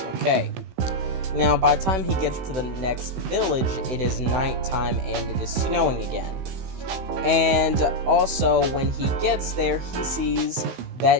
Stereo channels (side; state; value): left; late; 16 ms